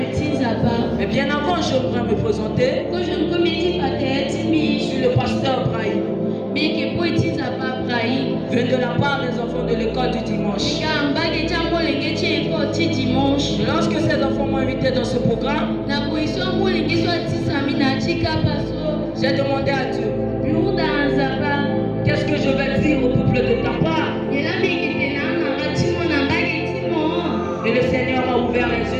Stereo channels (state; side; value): identical; both; correlation 1.00